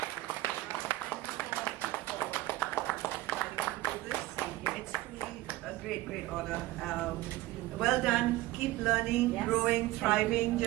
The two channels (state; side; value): quieter; left; 17.4 dB